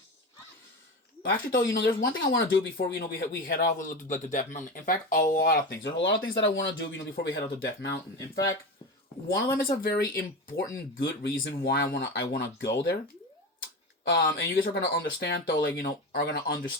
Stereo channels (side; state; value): both; normal; correlation 0.23